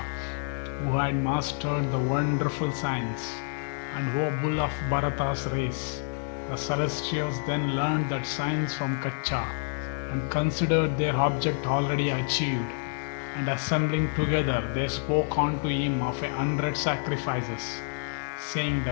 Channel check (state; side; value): silent; right; digital silence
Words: who had mastered the wonderful science, and O bull of Bharata's race. The celestials then learned that science from Kacha, and considered their object already achieved, and assembling together they spoke unto him of 100 sacrifices, saying,